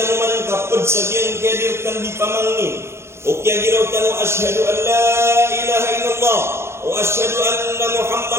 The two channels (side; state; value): left; late; 0.13 ms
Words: kapad sagin kedirkan di pamangni o kaya giraw tanu asyhadu an la ilaha illallah wa asyhadu anna